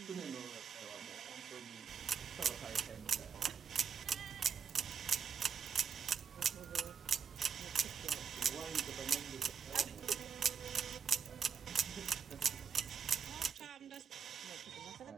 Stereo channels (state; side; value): quieter; left; 6.9 dB